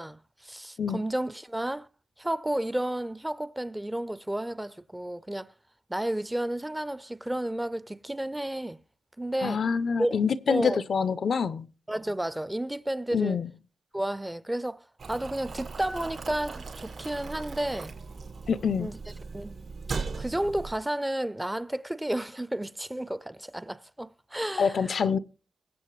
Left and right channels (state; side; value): normal; both; correlation 0.90